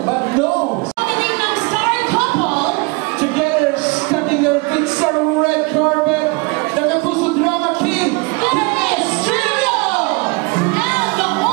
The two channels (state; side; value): quieter; left; 27.8 dB